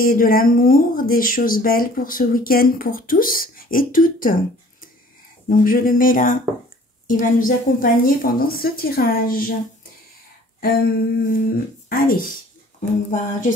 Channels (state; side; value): normal; both; correlation 0.52